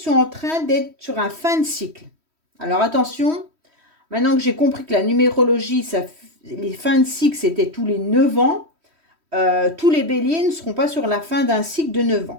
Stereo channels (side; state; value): left; late; 3.1 ms